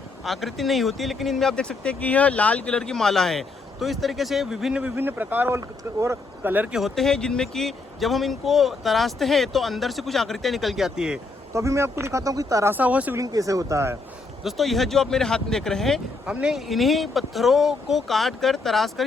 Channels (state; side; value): quieter; right; 3.7 dB